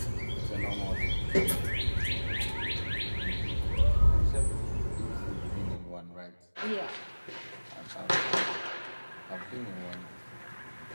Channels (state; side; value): inverted; both; correlation -1.00